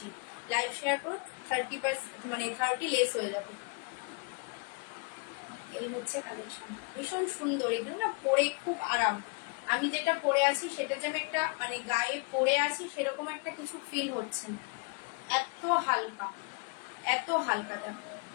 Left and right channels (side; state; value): right; quieter; 33.4 dB